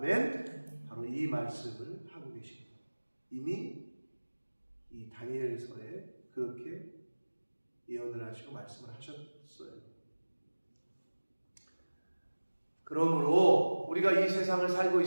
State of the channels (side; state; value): both; inverted; correlation -1.00